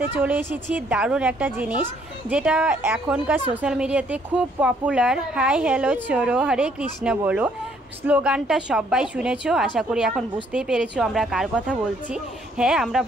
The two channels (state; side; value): normal; both; correlation 0.66